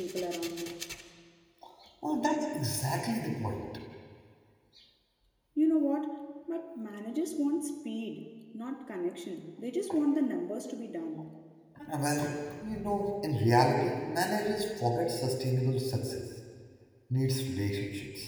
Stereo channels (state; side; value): identical; both; correlation 1.00